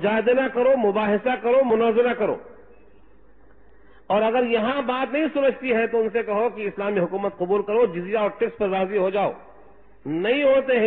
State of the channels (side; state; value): both; identical; correlation 1.00